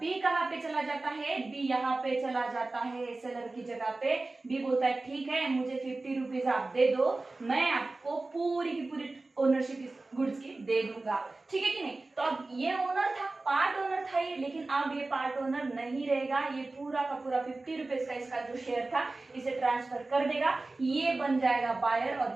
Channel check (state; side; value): quieter; left; 3.2 dB